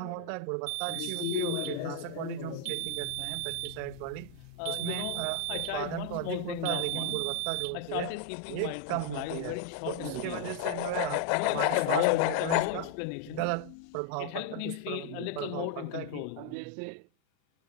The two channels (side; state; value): both; different; correlation 0.00